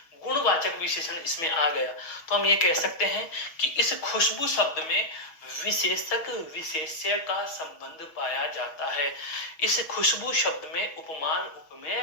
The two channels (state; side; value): late; right; 6.2 ms